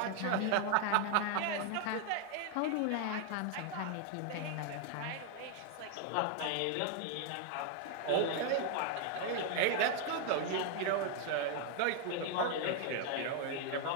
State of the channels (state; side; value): different; both; correlation 0.00